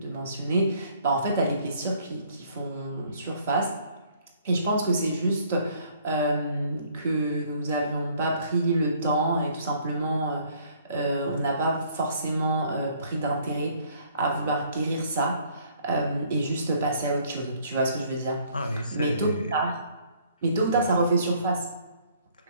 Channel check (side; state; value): both; inverted; correlation -0.61